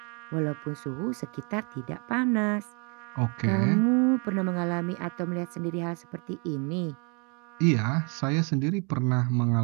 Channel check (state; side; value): quieter; left; 34.7 dB